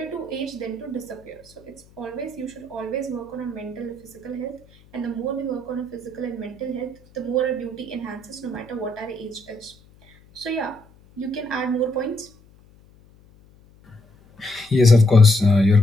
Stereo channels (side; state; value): left; noise; hum, 27 dB below the sound